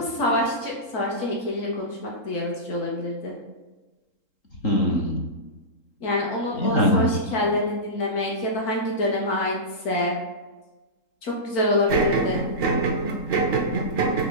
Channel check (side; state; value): right; late; 3.7 ms